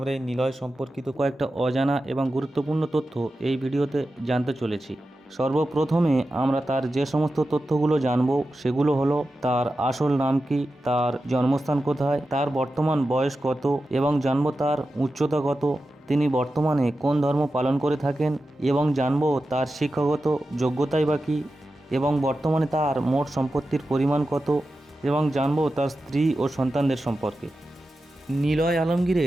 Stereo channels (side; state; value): both; normal; correlation 0.92